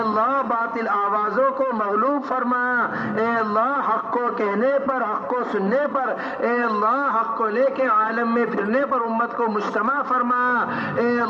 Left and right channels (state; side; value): identical; both; correlation 1.00